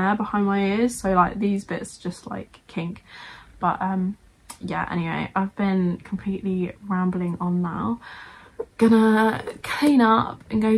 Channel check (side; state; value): both; identical; correlation 1.00